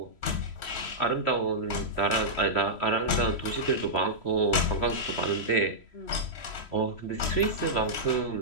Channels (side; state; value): right; late; 3.0 ms